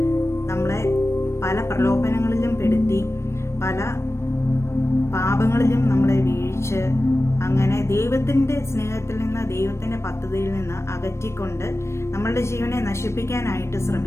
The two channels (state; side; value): late; right; 0.13 ms